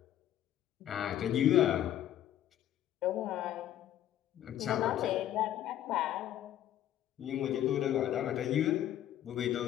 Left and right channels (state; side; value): quieter; right; 11.9 dB